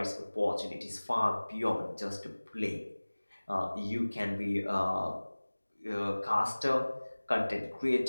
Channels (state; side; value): inverted; both; correlation -1.00